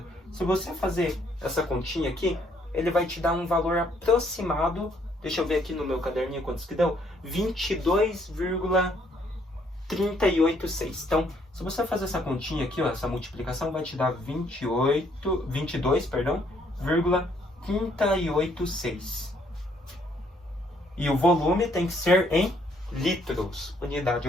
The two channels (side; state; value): both; normal; correlation 0.68